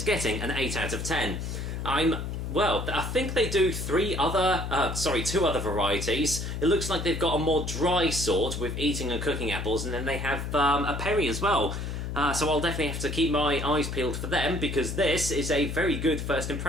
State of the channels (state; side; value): noise; left; hum, 4 dB below the sound